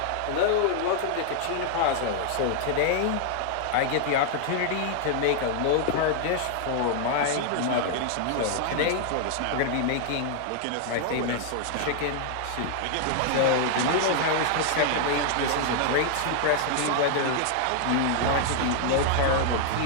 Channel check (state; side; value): different; both; correlation 0.00